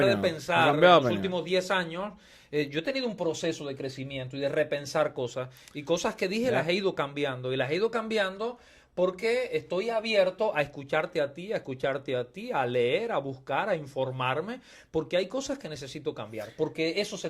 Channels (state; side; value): identical; both; correlation 1.00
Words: de pensar en los últimos 10 años. Yo he tenido un proceso de crecimiento y de repensar cosas, y cosas que dije las he ido cambiando, y las he ido cambiando porque estoy abierto a escucharte a ti, a leer, a buscar, a informarme, porque hay cosas que necesito cambiar, porque eso